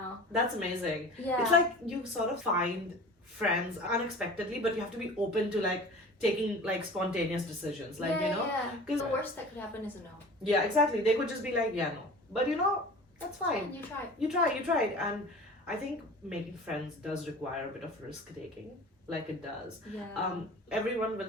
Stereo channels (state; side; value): normal; both; correlation 0.39